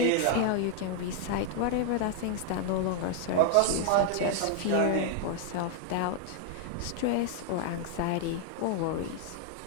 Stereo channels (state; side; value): different; both; correlation 0.00